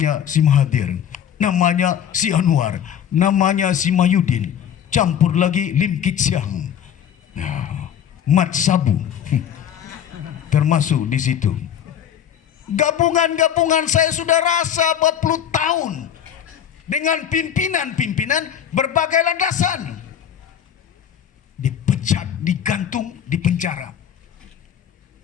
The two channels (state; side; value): quieter; right; 9.2 dB